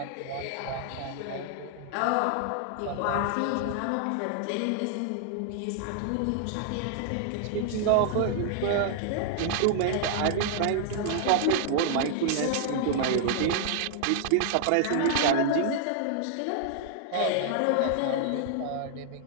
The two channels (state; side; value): different; both; correlation -0.01